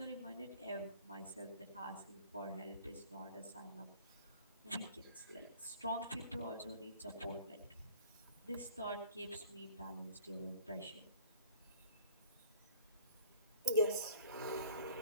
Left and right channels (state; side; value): inverted; both; correlation -0.47